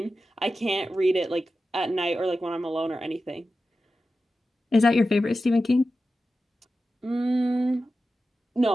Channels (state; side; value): normal; both; correlation 0.92